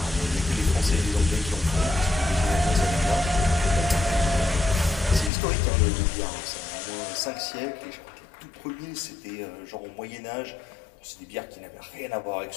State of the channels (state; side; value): drops out; right; at 5.3 s